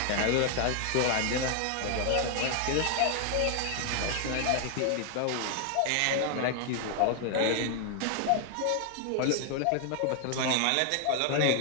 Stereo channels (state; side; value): different; both; correlation 0.00